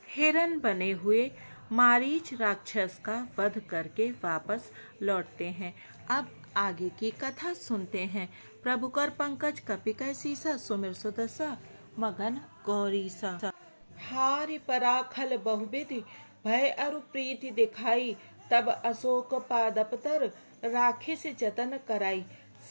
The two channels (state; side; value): inverted; both; correlation -1.00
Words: हिरण बने हुए मारीच राक्षस का वध करके वापस लौटते हैं। अब आगे की कथा सुनते हैं। प्रभु कर पंकज कपि कै सीसा सुमिर सुदसा मगन गौरीसा। हारि पराखल बहुविधि भय अरु प्रीति दिखाई तब अशोक पादपतर राखे से जतन कराई।